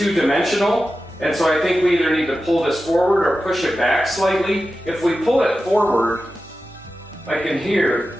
and so I think we either need to pull this forward or push it back slightly. If we pull it forward, like in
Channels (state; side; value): normal; both; correlation 0.93